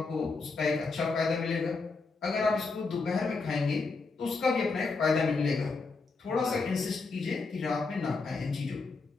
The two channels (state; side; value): quieter; right; 4.2 dB